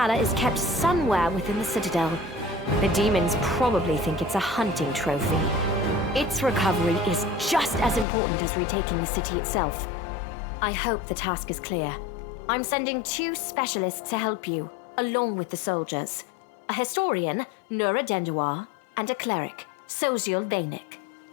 is kept somewhere within the Citadel. The demons probably think it's a hunting trophy. Its recovery is just as important as retaking the city itself. I hope the task is clear. I'm sending 2 specialists to help you, along with the soldiers. A historian, Nura Denduar, and a cleric, Soziel Bainik.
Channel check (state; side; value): drops out; right; at 8.1 s